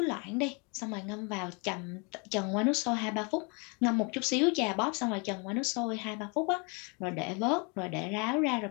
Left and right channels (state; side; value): quieter; right; 32.4 dB